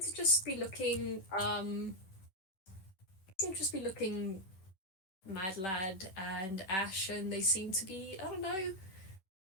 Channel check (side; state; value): right; late; 10 ms